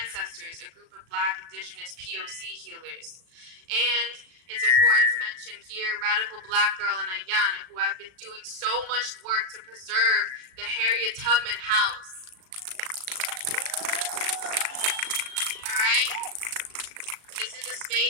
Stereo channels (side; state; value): left; late; 36 ms